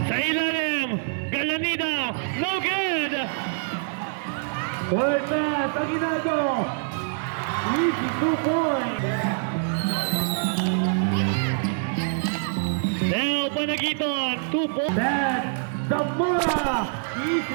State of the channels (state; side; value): silent; left; digital silence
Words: Sa ilalim. Galanida. No good. Third pass. Aguinaldo. Easy 2 points. Now Panagiton. 2 points. Pass. Zamora.